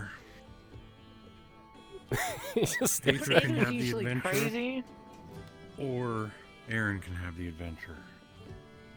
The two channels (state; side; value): identical; both; correlation 1.00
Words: Just Aether can have the usually adventure, crazy. or Aaron can have the adventure,